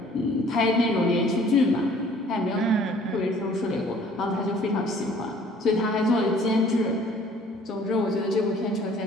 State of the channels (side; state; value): both; normal; correlation 0.55